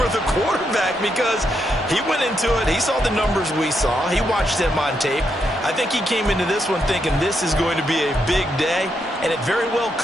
the quarterback, because he went into it, he saw the numbers we saw, he watched them on tape. I think he came into this one thinking this is going to be a big day, and it very well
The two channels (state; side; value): normal; both; correlation 0.80